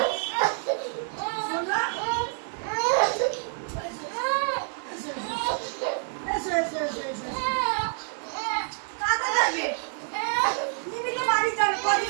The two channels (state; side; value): silent; left; 57 dB below the other